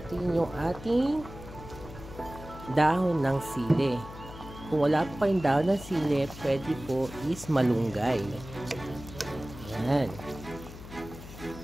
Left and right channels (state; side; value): noise; left; hum, 14 dB below the sound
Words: yung ating dahon ng sili. Kung wala po kayong dahon ng sili, pwede po is malunggay. Ayan.